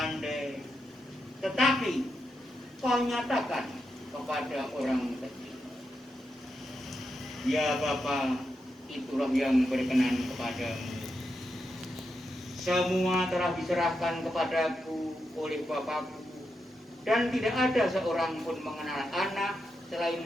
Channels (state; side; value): normal; both; correlation 0.86